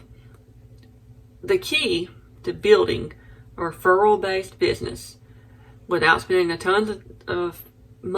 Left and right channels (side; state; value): both; identical; correlation 1.00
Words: key to building a referral-based business without spending a ton of